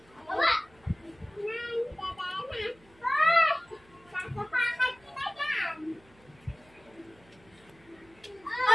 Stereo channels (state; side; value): noise; right; hum, 28 dB below the sound